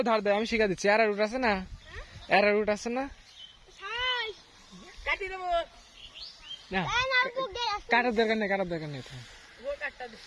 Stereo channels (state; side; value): identical; both; correlation 1.00